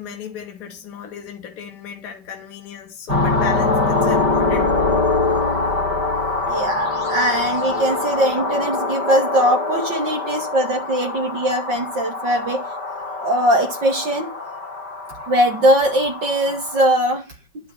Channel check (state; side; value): late; left; 5.5 ms